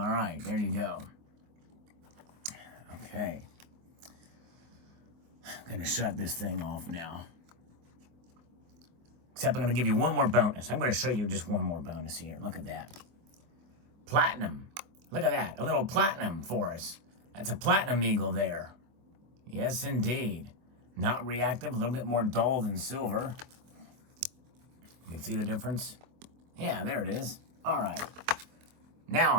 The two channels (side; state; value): left; late; 24 ms